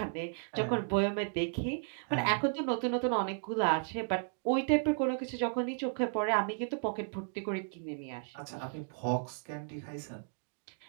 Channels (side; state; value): left; silent; 55 dB below the other